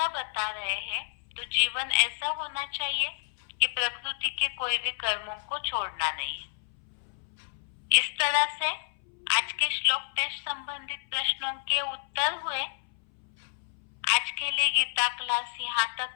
बता रहे हैं। तो जीवन ऐसा होना चाहिए कि प्रकृति के कोई भी कर्मों को छोड़ना नहीं है। इस तरह से आज के श्लोक टेस्ट संबंधित प्रश्नों के उत्तर हुए। आज के लिए गीता क्लास यहाँ तक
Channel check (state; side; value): silent; right; 58 dB below the other